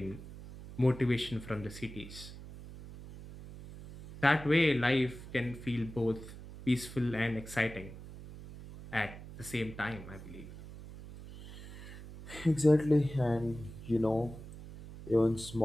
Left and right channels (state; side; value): noise; right; hum, 14 dB below the sound